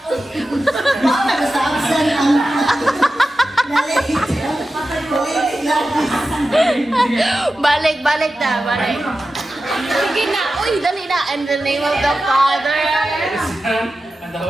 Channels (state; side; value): normal; both; correlation 0.93